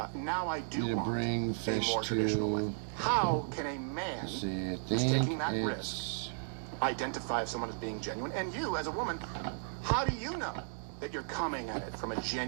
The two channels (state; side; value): silent; left; digital silence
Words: now I do want bring a fish more traditional way. to. How can a man See, I who's think taking that risk identify if someone is being genuine? And you, as a woman, how do you know that you're coming at it from a